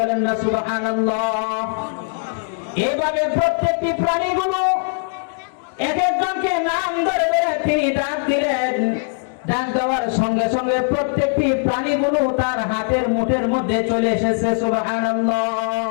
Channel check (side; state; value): right; silent; 65 dB below the other